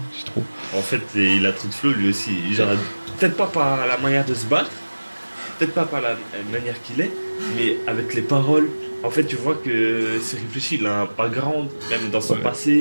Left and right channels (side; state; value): both; inverted; correlation -1.00